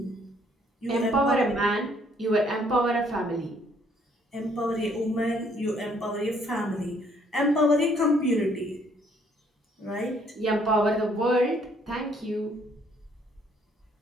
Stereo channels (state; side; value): normal; both; correlation 0.65